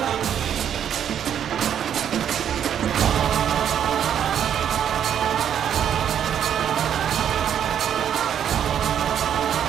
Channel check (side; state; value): left; quieter; 9.2 dB